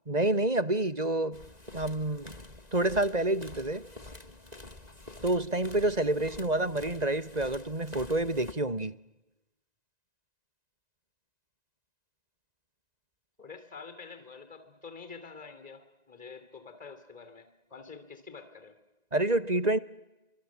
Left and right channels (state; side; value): late; left; 1.9 ms